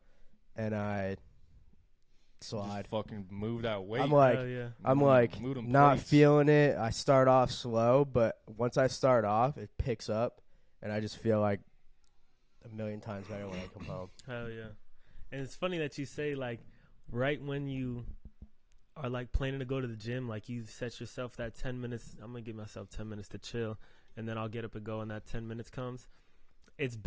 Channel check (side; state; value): both; identical; correlation 1.00